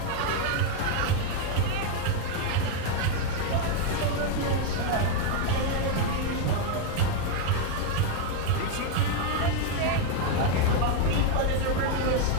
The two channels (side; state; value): both; different; correlation 0.01